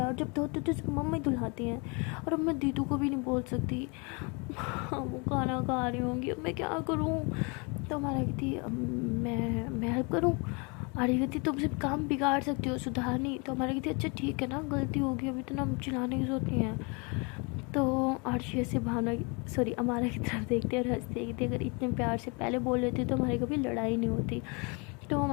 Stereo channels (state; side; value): quieter; right; 31.7 dB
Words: और जब धोते तो सिर्फ मम्मी धुलाती हैं, और अब मैं दीदू को भी नहीं बोल सकती। वो खाना खा रही होंगी, अब मैं क्या करूँ। तो हमारा कहती मैं हेल्प करूँ। आर्य कहती तुम सिर्फ काम बिगाड़ सकती हो, सुधार नहीं। तो हमारा कहती अच्छा ठीक है ना, गलती होगी, अभी तो ना चिल्लाने की जरूरत नहीं है। तो आर्शी से भावना सॉरी अमारा की तरफ देखते और हंसते कहती अगर इतने प्यार से पहले बोल लेती तो हमारी कभी लड़ाई नहीं होती। तो